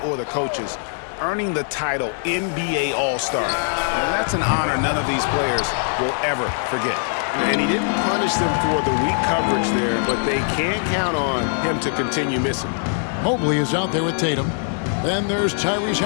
the coaches, earning the title NBA All-Star, that's an honor none of these players will ever forget. And he didn't punish them for the weak coverage there, but they can't count on him to continue missing. Mobley is out there with Tatum. Then there's Tyrese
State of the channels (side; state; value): right; silent; 62 dB below the other